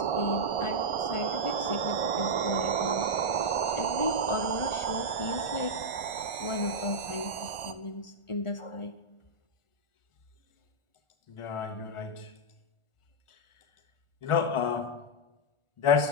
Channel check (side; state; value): right; late; 1.4 ms